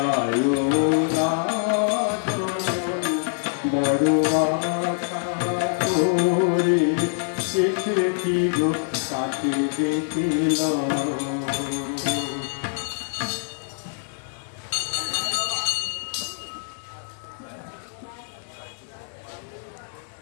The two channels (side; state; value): right; silent; digital silence